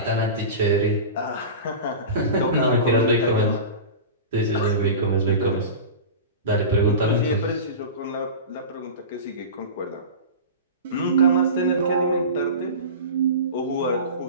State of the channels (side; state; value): both; inverted; correlation -0.31